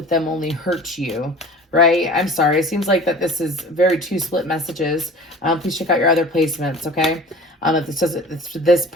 them only hurts you, right? I'm sorry. It seems like that this is very two split messages. Please check out your other placements, okay? If this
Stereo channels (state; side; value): normal; both; correlation 0.42